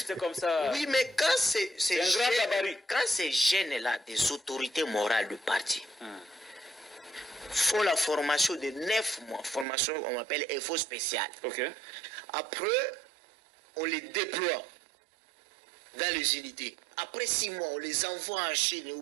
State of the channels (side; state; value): left; drops out; at 9.7 s